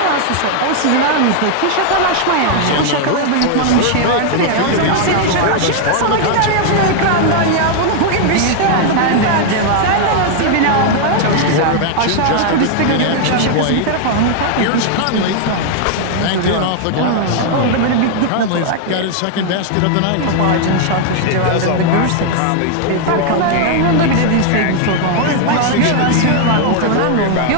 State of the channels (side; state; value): both; different; correlation 0.00